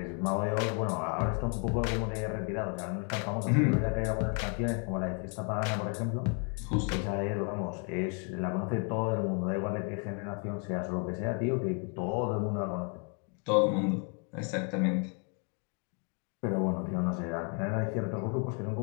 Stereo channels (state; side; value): quieter; right; 38.5 dB